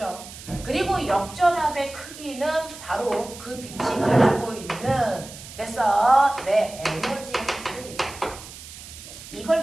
그리고 역전압의 크기는 바로 그 빛이 가지고 있는 됐어? 내 에너지의 크기입니다. 이걸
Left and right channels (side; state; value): right; noise; hiss, 15 dB below the sound